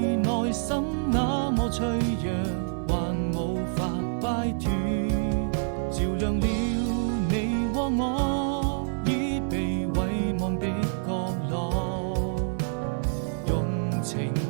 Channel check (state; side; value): silent; left; 60 dB below the other